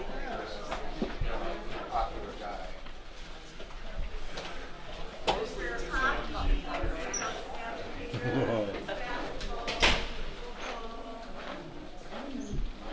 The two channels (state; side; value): identical; both; correlation 1.00